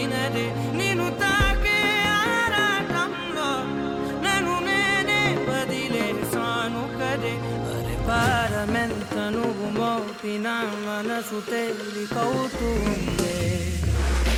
నిన్ను తాకే ఆరాటంలో నన్ను నేనే వదిలేసాను కదే పరిపారమెంత నువ్వు మోపిన మనసు తేలికవుతుంది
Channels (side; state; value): both; identical; correlation 1.00